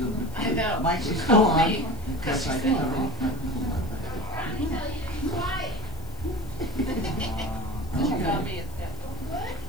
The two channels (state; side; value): noise; left; hiss, 24 dB below the sound